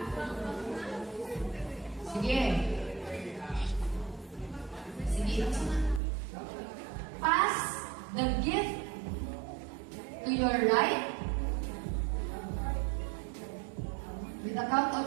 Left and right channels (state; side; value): drops out; left; at 6.0 s